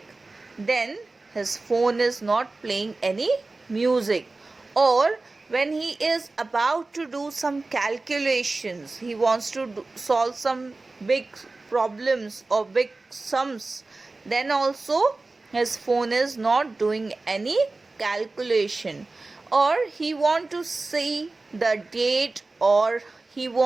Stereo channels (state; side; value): quieter; left; 3.4 dB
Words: then his phone is not playing any music. Or when he is about to do some calculations, he wants to solve some big problems or big sums, then also his phone is not doing any calculation. Or he want to see the date, or he